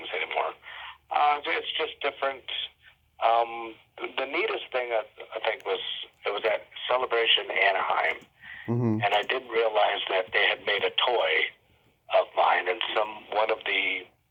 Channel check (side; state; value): both; identical; correlation 1.00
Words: anymore. It's just different. The neatest thing I think was it was at Celebration Anaheim, and I didn't realize that they had made a toy of mine, and one of the